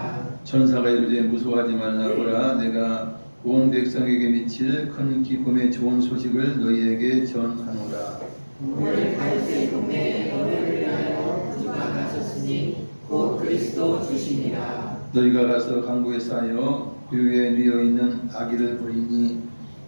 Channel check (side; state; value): both; inverted; correlation -1.00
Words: 천사가 이르되 무서워하지 말라보라. 내가 온 백성에게 미칠 큰 기쁨의 좋은 소식을 너희에게 전하노라. 오늘 다윗의 동네에 너희를 위하여 구주가 나셨으니 곧 그리스도 주시니라. 너희가 가서 강구에 쌓여 그 위에 누워 있는 아기를 보리니